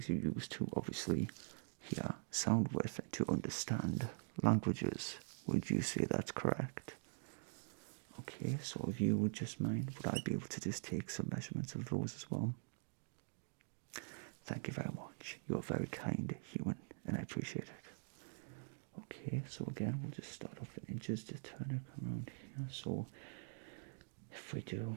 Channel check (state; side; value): silent; left; digital silence